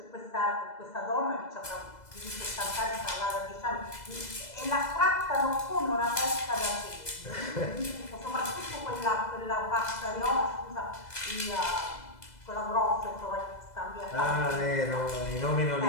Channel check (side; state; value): right; late; 2.0 ms